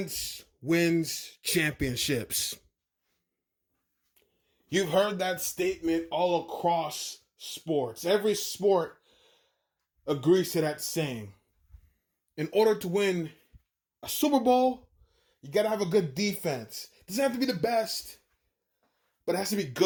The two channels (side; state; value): both; identical; correlation 1.00